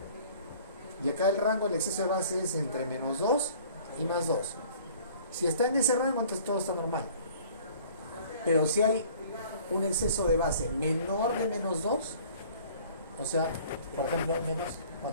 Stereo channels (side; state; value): both; inverted; correlation -0.51